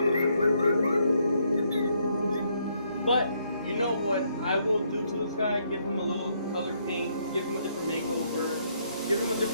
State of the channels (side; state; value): both; inverted; correlation -0.72